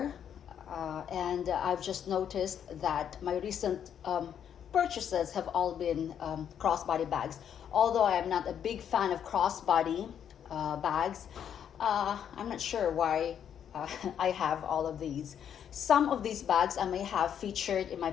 and I've just noticed that my recent purchases have all been crossbody bags. Although I am not a big fan of crossbody bags, I'm not sure why I have all of these. Some of these bags I may have featured in my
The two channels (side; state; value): right; quieter; 8.9 dB